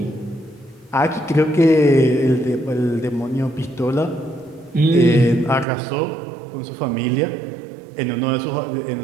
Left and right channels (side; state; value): left; drops out; at 5.7 s